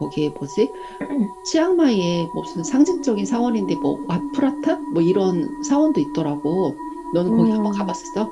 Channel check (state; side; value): identical; both; correlation 1.00